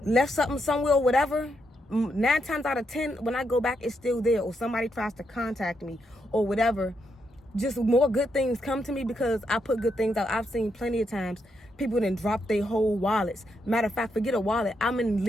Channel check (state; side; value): normal; both; correlation 0.80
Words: left something somewhere or whatever, 9 times out of 10, when I go back, it's still there, or somebody tries to contact me or whatever. Just more good things come to me because I put good things out. I've seen plenty of times people didn't drop their whole wallets. Matter of fact, forget a wallet. I'm in